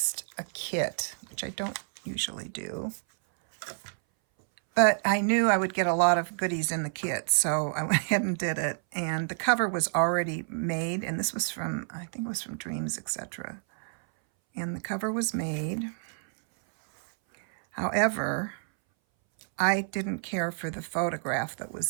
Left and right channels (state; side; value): silent; left; 59 dB below the other